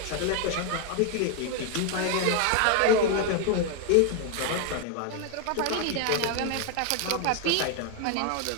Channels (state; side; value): different; both; correlation 0.01